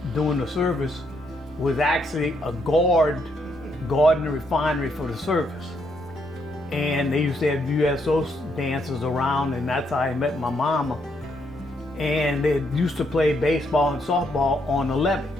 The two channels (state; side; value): noise; left; rumble, 23 dB below the sound